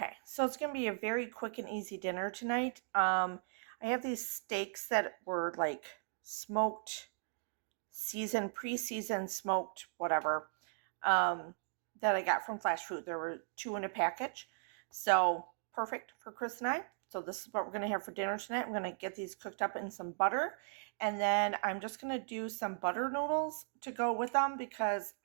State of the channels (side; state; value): left; silent; digital silence